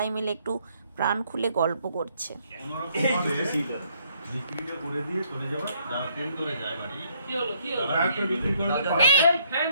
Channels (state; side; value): inverted; both; correlation -0.68